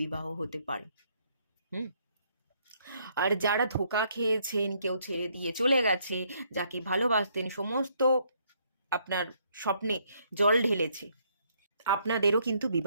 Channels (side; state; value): both; inverted; correlation -0.70